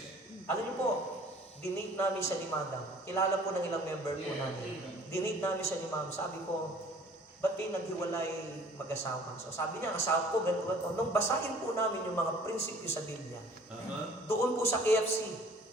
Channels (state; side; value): normal; both; correlation 0.51